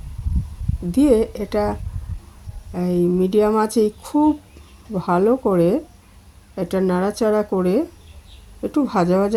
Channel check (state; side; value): identical; both; correlation 1.00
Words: দিয়ে এটা এই মিডিয়াম আঁচেই খুব ভালো করে এটা নাড়াচাড়া করে একটু ভাজা